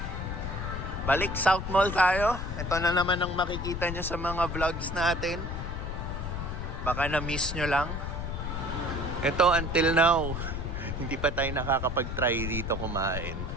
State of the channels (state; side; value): noise; left; rumble, 4 dB below the sound